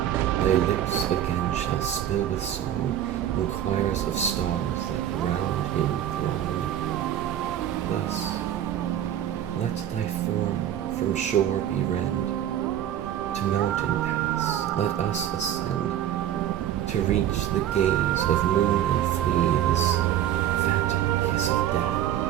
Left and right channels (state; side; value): quieter; left; 11.1 dB